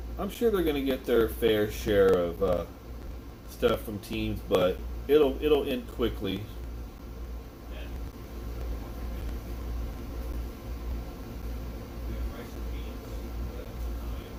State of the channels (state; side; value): identical; both; correlation 1.00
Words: they're going to get their fair share of stuff from teams, but it'll end quickly.